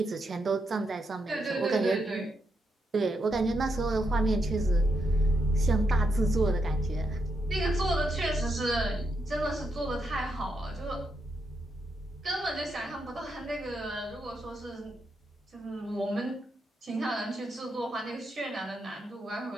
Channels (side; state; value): both; normal; correlation 0.81